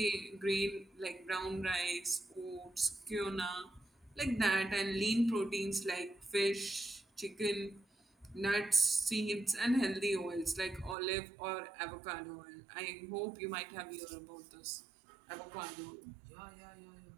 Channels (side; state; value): left; drops out; at 11.0 s